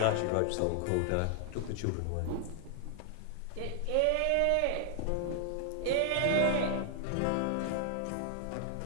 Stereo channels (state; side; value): different; both; correlation 0.00